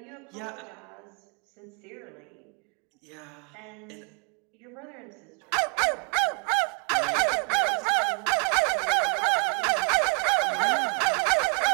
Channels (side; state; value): left; quieter; 37.5 dB